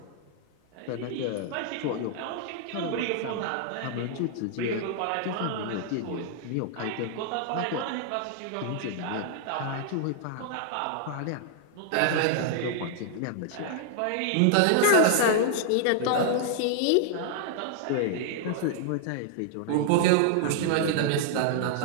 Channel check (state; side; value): different; both; correlation -0.01